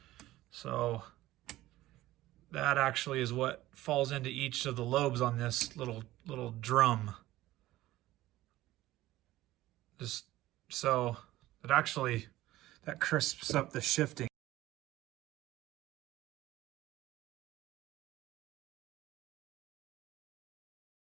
So that actually is what falls into each of the lobes on this little drum. Just so that crisps up the shifting.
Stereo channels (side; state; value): left; quieter; 16.2 dB